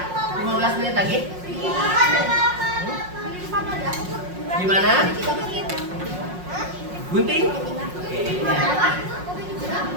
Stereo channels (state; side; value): late; left; 5.5 ms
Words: 15 menit lagi. Gimana? Gunting? Oke, ini ya.